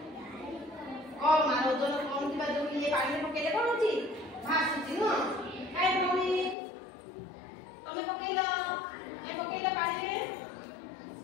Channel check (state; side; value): drops out; right; at 6.6 s